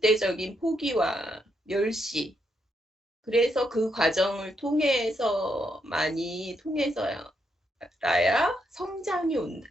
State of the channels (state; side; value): normal; both; correlation 0.78